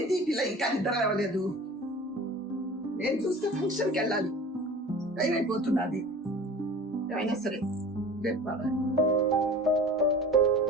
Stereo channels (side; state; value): both; normal; correlation 0.39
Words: ఈ పిల్ల ఇంకా నిద్ర లేవలేదు? నేను చూస్తే ఫంక్షన్కి వెళ్ళాలి, టైం అయిపోతున్నది. ఏమైనా సరే రేపు పడాలి.